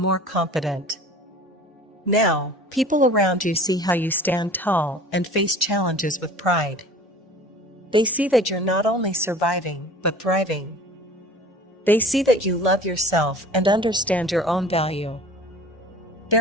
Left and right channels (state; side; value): normal; both; correlation 0.44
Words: confident. Now, people around you see how you stand tall and face challenges with pride. They see that you're not only surviving, but thriving. They see that you love yourself and understand your own value.